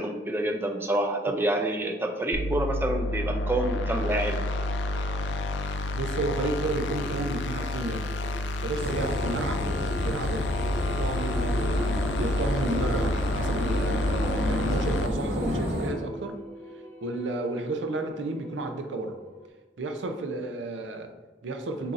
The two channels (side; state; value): both; normal; correlation 0.62